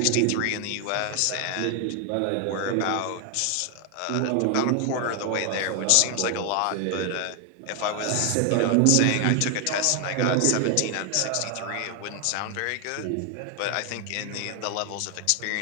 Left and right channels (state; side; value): different; both; correlation 0.00